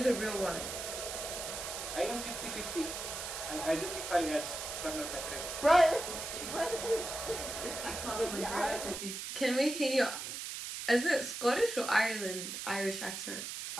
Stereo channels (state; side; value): noise; right; hiss, 6 dB below the sound